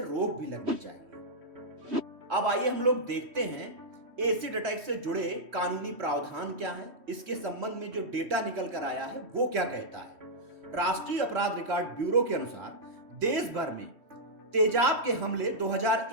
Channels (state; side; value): late; left; 3.1 ms